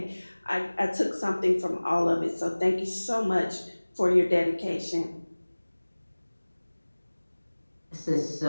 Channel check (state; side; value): inverted; both; correlation -1.00